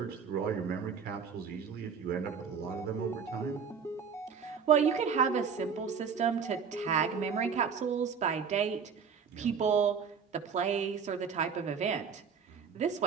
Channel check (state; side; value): quieter; left; 6.4 dB